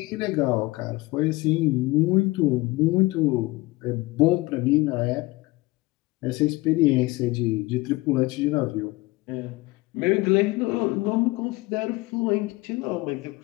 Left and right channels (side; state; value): right; quieter; 21.6 dB